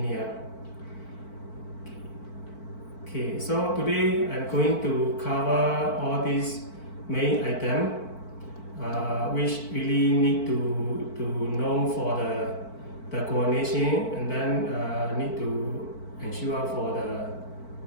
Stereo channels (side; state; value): right; late; 4.5 ms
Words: Okay, so today I'm going to cover all these main items which really need to know for the coordination, and then need to ensure for